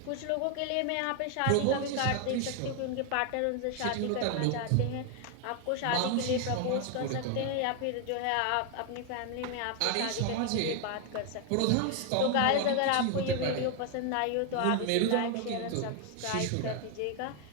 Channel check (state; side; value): different; both; correlation 0.01